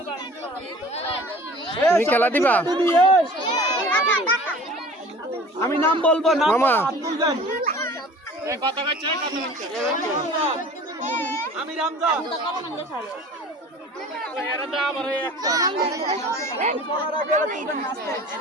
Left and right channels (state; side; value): normal; both; correlation 0.44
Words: তুমি খেলা দিবা? আমি নাম বলবো না মামা। আমি রামজা।